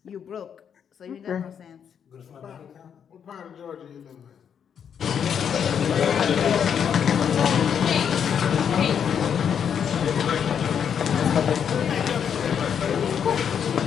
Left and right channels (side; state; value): right; quieter; 7.9 dB